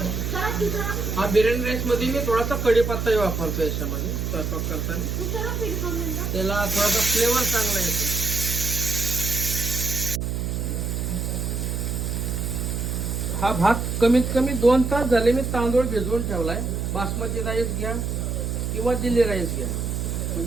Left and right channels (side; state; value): right; noise; hum, 2 dB below the sound